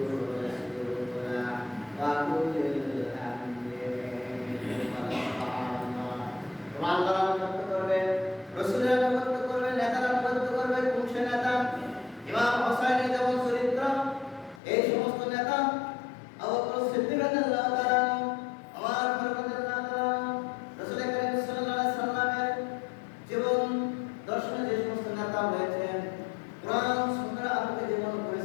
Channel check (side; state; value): right; drops out; at 14.6 s